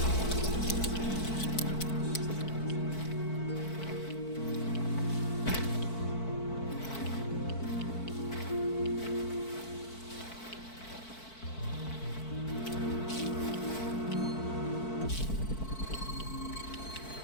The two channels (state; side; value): late; right; 4.5 ms